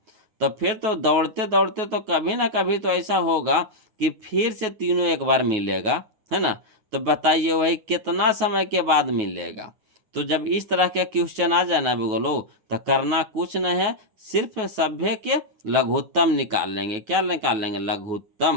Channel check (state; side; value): late; left; 9.3 ms